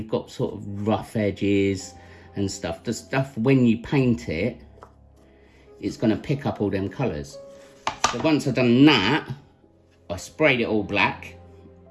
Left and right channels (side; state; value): both; identical; correlation 1.00